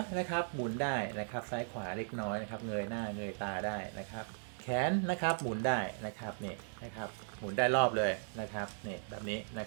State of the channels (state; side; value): silent; left; digital silence